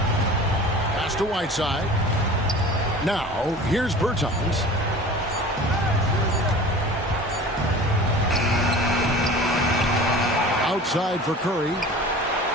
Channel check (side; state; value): both; normal; correlation 0.40